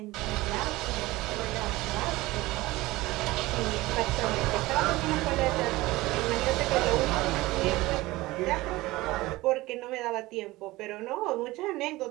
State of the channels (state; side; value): quieter; left; 19.4 dB